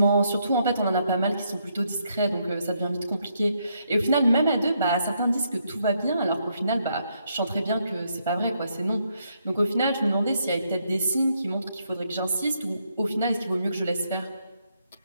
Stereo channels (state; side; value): inverted; both; correlation -0.76